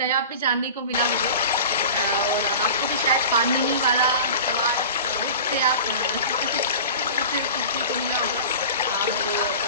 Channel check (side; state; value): both; inverted; correlation -0.36